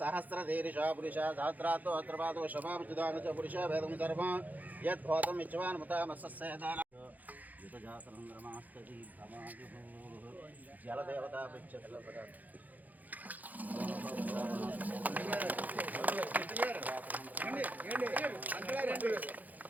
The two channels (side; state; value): left; late; 0.081 ms